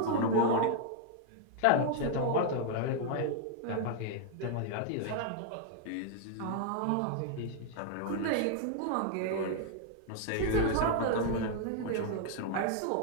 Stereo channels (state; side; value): different; both; correlation 0.00